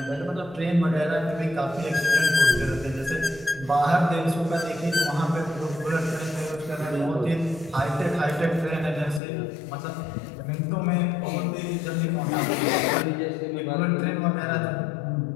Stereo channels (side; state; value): right; drops out; at 9.2 s